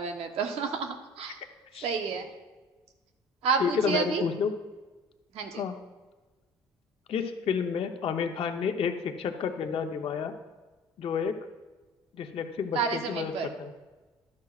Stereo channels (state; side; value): normal; both; correlation 0.43